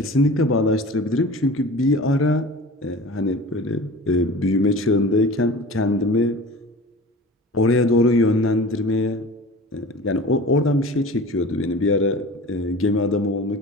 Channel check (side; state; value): both; normal; correlation 0.38